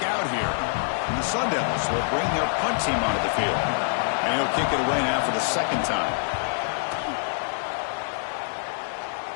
out here. And the Sun Devils will bring their punt team onto the field. And he'll kick it away now for the second time.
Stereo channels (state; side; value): silent; right; digital silence